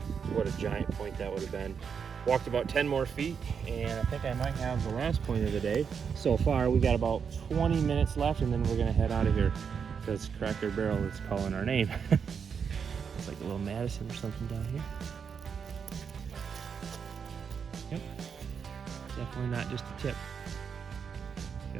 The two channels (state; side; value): quieter; left; 6.6 dB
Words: What a giant point that would have been. Walked about 10 more feet, and I think I might have the last point of the day. So far, we got about 20 minutes left, and then we're gonna head out of here because Cracker Barrel is calling our name. It's like a little Madison or something down here. Yep. Definitely not just a tip.